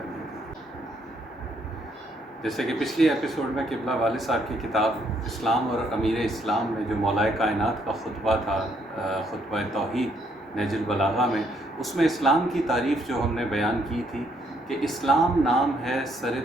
کی. جیسے کہ پچھلی ایپیسوڈ میں قبلہ والد صاحب کی کتاب اسلام اور امیر اسلام میں جو مولائے کائنات کا خطبہ تھا، خطبہ توحید نہج البلاغہ میں، اس میں اسلام کی تعریف جو ہم نے بیان کی تھی کہ اسلام نام ہے سر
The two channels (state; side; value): normal; both; correlation 0.71